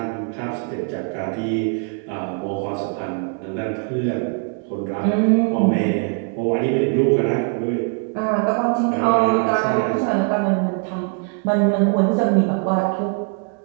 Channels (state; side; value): quieter; left; 39.6 dB